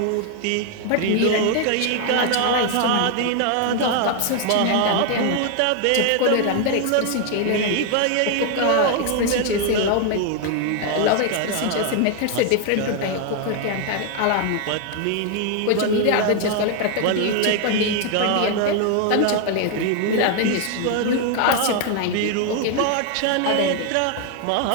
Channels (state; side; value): different; both; correlation 0.00